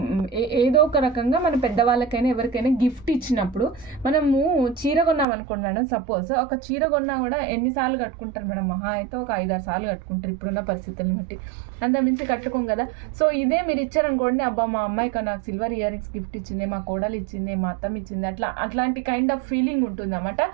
ఏదో ఒక రకంగా మన పెద్దవాళ్ళకైనా ఎవరికైనా గిఫ్ట్ ఇచ్చినప్పుడు మనము చీర కొన్నాం అనుకోండి మేడం. సపోజ్ ఒక చీర కొన్నా కూడా ఎన్నిసార్లు కట్టుకుంటారు మేడం? మహా అయితే ఒక 5-6 సార్లు కట్టుకుంటారు ఇప్పుడున్న పరిస్థితులను బట్టి, అంత మించి కట్టుకోం కదా. సో ఇదే మీరు ఇచ్చారనుకోండి, అబ్బా మా అమ్మాయికి నాకు సిల్వర్ ఇయర్ రింగ్స్ గిఫ్ట్ ఇచ్చింది, మా కోడలు ఇచ్చింది, మా అత్తమ్మ ఇచ్చింది, అట్లాంటి కైండ్ ఆఫ్ ఫీలింగ్ ఉంటుంది అన్నమాట.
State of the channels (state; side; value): drops out; left; at 5.2 s